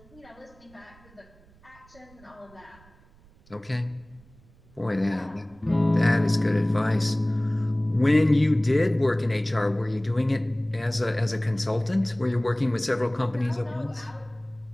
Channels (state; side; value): noise; right; rumble, 28 dB below the sound